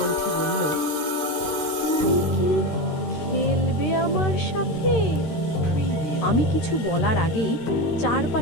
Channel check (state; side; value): late; right; 13 ms